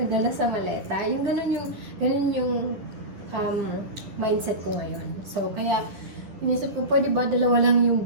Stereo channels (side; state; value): left; late; 10 ms